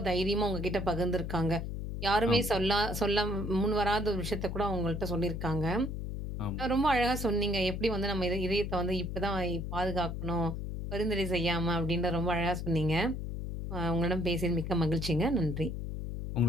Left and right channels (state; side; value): noise; left; hum, 5 dB below the sound